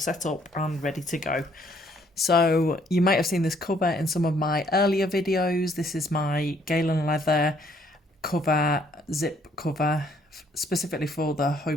up and ready to go. So you might have seen this cover in some of my earlier videos. This is my Galen Leather cover, zip cover, specifically for the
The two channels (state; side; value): normal; both; correlation 0.65